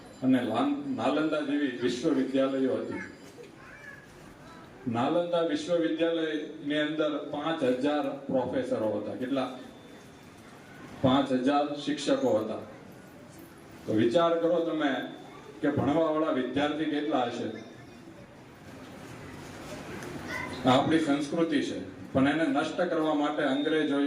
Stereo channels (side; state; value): both; identical; correlation 1.00